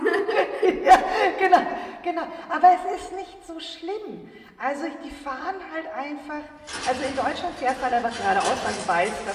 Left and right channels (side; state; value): both; identical; correlation 1.00